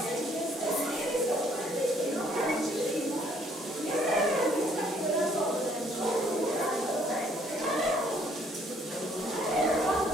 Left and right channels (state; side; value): normal; both; correlation 0.63